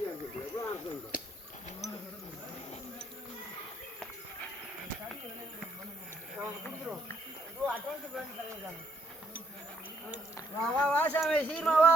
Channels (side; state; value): both; normal; correlation 0.71